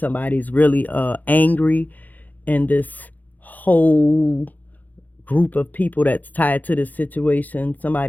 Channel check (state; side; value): late; right; 0.082 ms